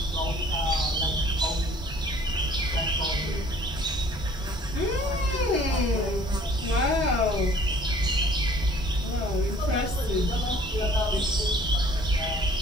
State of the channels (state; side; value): normal; both; correlation 0.54